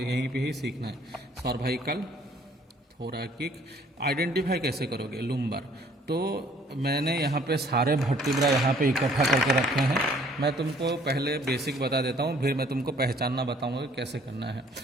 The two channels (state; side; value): normal; both; correlation 0.59